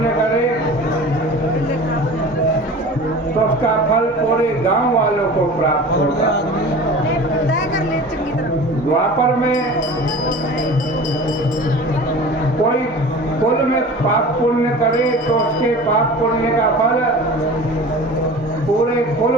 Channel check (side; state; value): both; normal; correlation 0.38